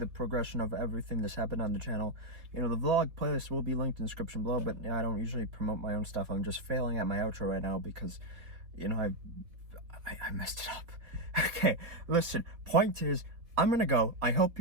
progression of everything that's happened on the channel, the vlog playlist will be linked in the description below. But I don't usually promote my own stuff. I'm just failing at my outro right now because I messed it up. Okay, listen, point is, I'm gonna go. I hope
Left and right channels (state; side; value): late; left; 4.1 ms